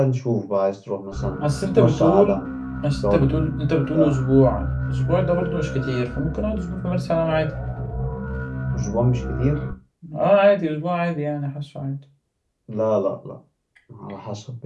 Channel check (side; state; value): both; identical; correlation 1.00